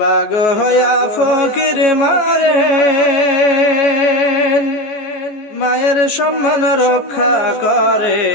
বাগ হয়া ফকির মারেন, মায়ের সম্মান রক্ষা করে।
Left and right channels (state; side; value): late; right; 14 ms